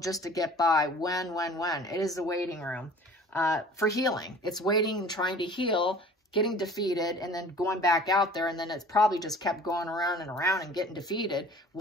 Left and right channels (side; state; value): both; normal; correlation 0.47